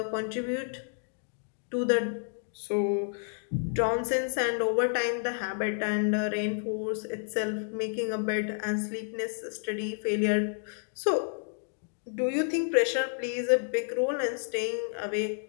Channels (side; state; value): right; silent; digital silence